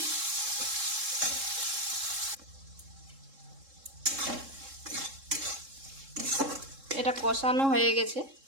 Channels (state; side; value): late; left; 3.7 ms